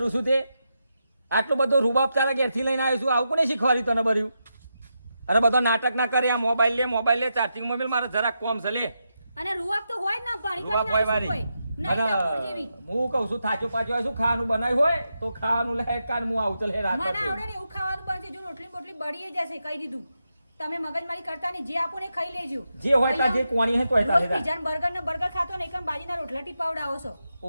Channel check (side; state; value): both; inverted; correlation -0.86